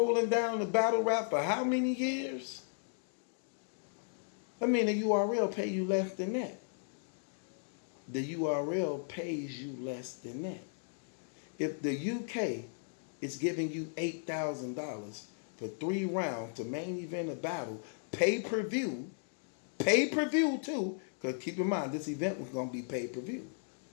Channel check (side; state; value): right; silent; digital silence